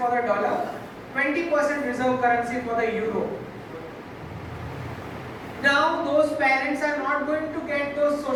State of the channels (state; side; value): identical; both; correlation 1.00